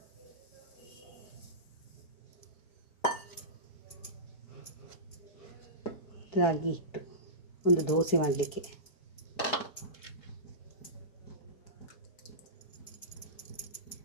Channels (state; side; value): late; right; 4.7 ms